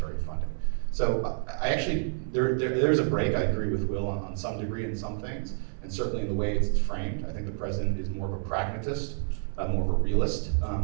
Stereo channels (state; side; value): silent; left; 59 dB below the other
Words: funding. So I actually, there's a break, I agree with Will on some degree in some things, and certainly in the way it's framed. I think the president is more of a pragmatist, more of a realist